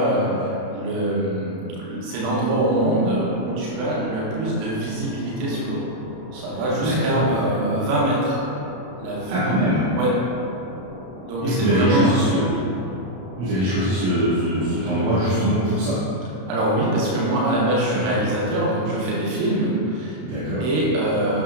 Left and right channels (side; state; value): left; late; 32 ms